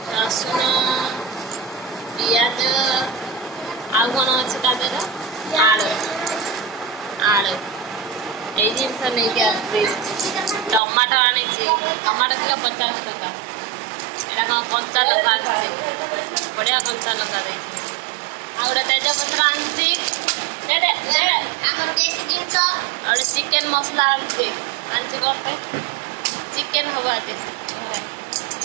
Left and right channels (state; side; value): drops out; left; at 10.8 s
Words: रसुण पियाज आ कौन अच्छे तादेह आलू आलू ये जिनस नहीं टमाटो आनी टमाटो किलो 50 टका यहाँ कौन कंचा लंका बढ़िया कंचा लंका दे गोटे तेजपत्र आनी गोटे चिकेन मसला आनी गोटे चिकेन हम आज